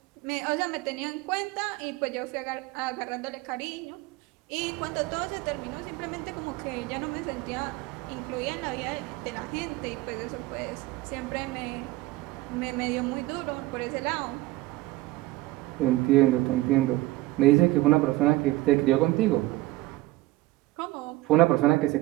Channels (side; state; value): left; quieter; 18.4 dB